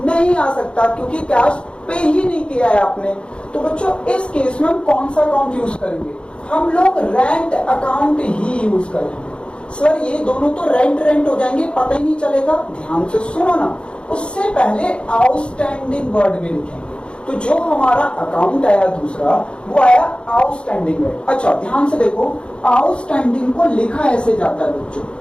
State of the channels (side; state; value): right; late; 0.056 ms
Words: नहीं आ सकता, क्योंकि कैश पे ही नहीं किया है आपने। तो बच्चों इस केस में हम कौन सा अकाउंट यूज करेंगे? हम लोग रेंट अकाउंट ही यूज करेंगे। सर ये दोनों तो रेंट हो जाएंगे, पता ही नहीं चलेगा। ध्यान से सुनो ना, उससे पहले आउटस्टैंडिंग वर्ड भी लिखेंगे। तो जो हमारा अकाउंट आया दूसरा, वो आया आउटस्टैंडिंग वर्ड। अच्छा ध्यान से देखो, आउटस्टैंडिंग को लिखा ऐसे जाता है बच्चों,